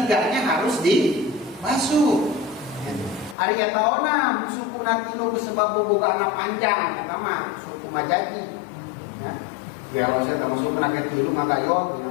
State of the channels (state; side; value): drops out; right; at 3.4 s